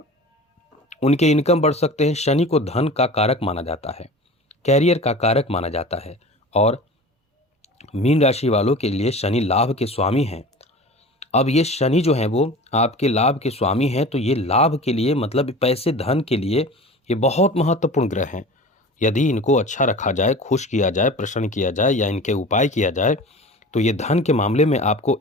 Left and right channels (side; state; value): both; normal; correlation 0.37